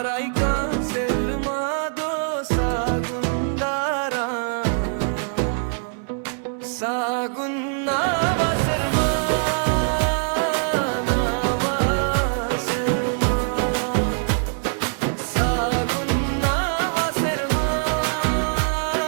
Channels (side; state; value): left; silent; 63 dB below the other